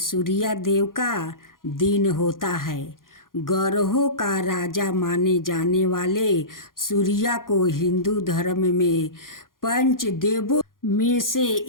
देव का दिन होता है। ग्रहों का राजा माने जाने वाले सूर्य को हिंदू धर्म में पंच देवों में से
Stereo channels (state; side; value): late; right; 0.91 ms